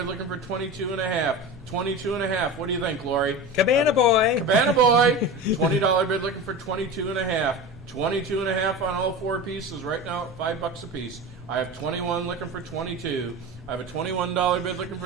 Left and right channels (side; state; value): both; normal; correlation 0.29